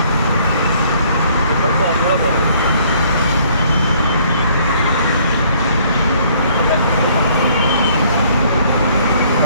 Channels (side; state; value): both; inverted; correlation -0.61